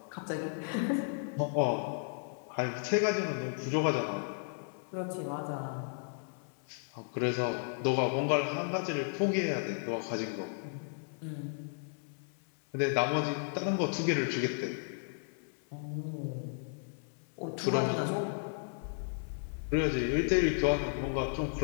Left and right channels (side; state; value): right; silent; 55 dB below the other